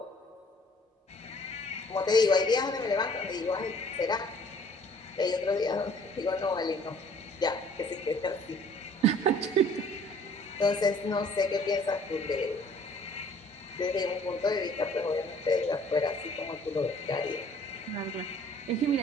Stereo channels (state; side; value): normal; both; correlation 0.55